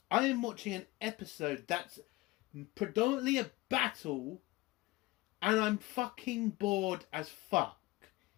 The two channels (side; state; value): right; quieter; 20.4 dB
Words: I am watching an episode that's predominantly a battle and I'm fucking bored as fuck?